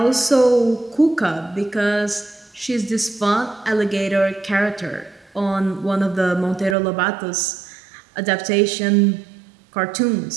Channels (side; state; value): left; drops out; at 6.8 s